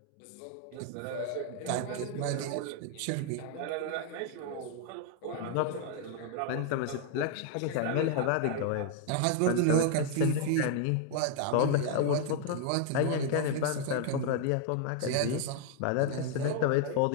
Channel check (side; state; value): both; different; correlation 0.00